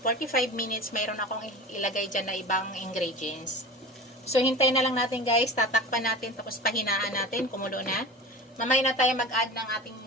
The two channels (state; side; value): normal; both; correlation 0.33